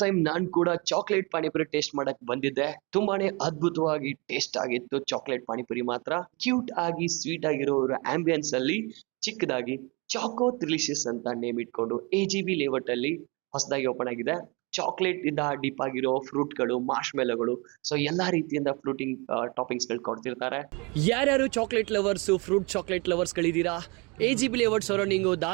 ಟೈಮ್ ನಾನ್ ಕೂಡ ಚಾಕ್ಲೇಟ್ ಪಾನಿಪುರಿ ಟೇಸ್ಟ್ ಮಾಡಕ್ ಬಂದಿದ್ದೆ. ತುಂಬಾನೇ ಅದ್ಭುತವಾಗಿ ಟೇಸ್ಟ್ ಆಗಿತ್ತು. ಚಾಕ್ಲೇಟ್ ಪಾನಿಪುರಿ ಮಾತ್ರ ಕ್ಯೂಟ್ ಆಗಿ ಸ್ವೀಟ್ ಆಗಿರೋ ಆಂಬಿಯನ್ಸ್ ಅಲ್ಲಿ ಚಿಕ್ಕದಾಗಿ ಚಾಕೋ ತ್ರಿಲಿಷಿಯಸ್ ಅಂತ ನೇಮ್ ಇಟ್ಕೊಂಡು AGB ಲೇಔಟ್ ಅಲ್ಲಿ ಹೊಸದಾಗಿ ಓಪನ್ ಆಗಿದೆ. ಚಾಕ್ಲೇಟ್ ಇಂದ ಡೀಪ್ ಆಗಿರೋ ಫ್ರೂಟ್ಗಳು, ಮಾರ್ಷ್ಮೆಲೋಗಳು, ಸೊ ಎಲ್ಲಾ ರೀತಿಯಿಂದ ಫ್ರೂಟಿಂಗ್ ಟಾಪಿಂಗ್ಸ್ ಗಳು ಕೊಡ್ತಿರ್ತಾರೆ. ಯಾರ್ಯಾರು ಚಾಕ್ಲೇಟ್ ಲವರ್ಸು, ಫ್ರೂಟ್ ಚಾಕ್ಲೇಟ್ ಲವರ್ಸ್ಗಳಿದ್ದೀರಾ? AGB layout surrounding,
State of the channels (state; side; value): quieter; left; 28.8 dB